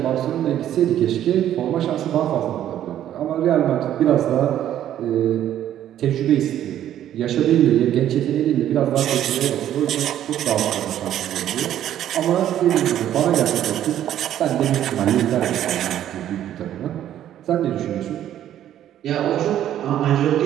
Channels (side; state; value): left; quieter; 11.4 dB